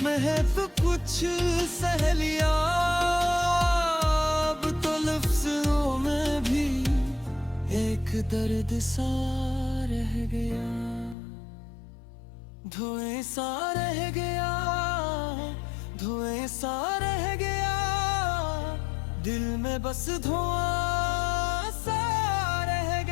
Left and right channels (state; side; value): drops out; right; at 11.2 s